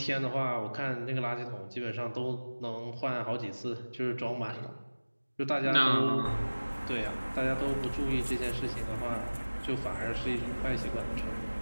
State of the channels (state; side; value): inverted; both; correlation -1.00